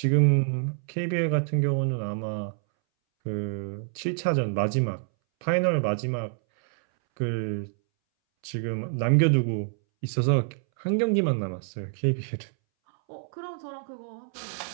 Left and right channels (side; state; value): left; silent; 60 dB below the other